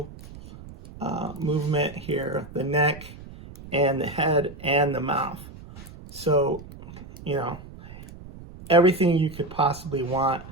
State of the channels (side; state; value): right; noise; rumble, 16 dB below the sound